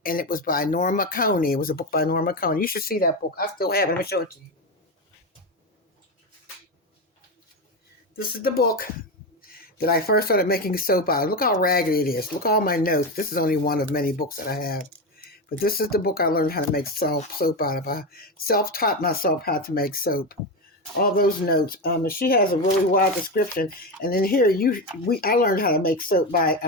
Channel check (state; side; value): normal; both; correlation 0.15